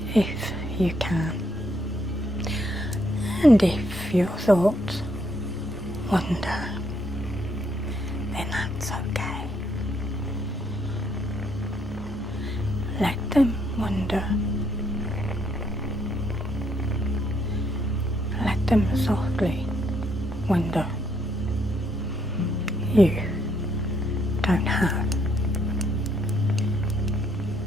if you can. And if your thoughts wander, then that's okay. Let them wander. Let them softly wander. You don't have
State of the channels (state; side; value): normal; both; correlation 0.72